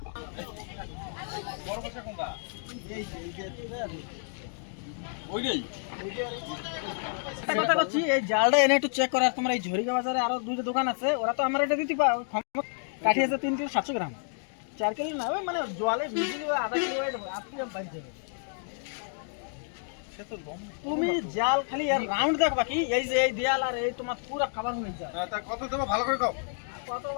কথা বলছি, এই জালটা এনে একটু চেক করার। তোমার এই ঝরিকা বাজারে আরো দুইটা দোকান আছে, ওরা তো আমার এটা দিতে কাঠি আছে 3 কিলো 700 গ্রাম, 4 কিলো না, ওই মানে জলে ভিজিয়ে আধা কিলো আপনি বাড়ি যাবে। তুমি জাল খালি আর রাউন্ড দেখ, বাকি এই যে এই দেয়াল আর এই তোমার পুরো খাবার হয়ে যায়। তা কত দেবো ভালো করে কও।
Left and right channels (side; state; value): right; silent; 58 dB below the other